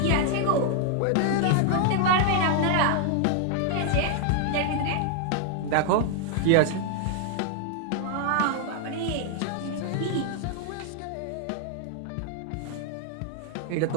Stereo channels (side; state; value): both; different; correlation 0.00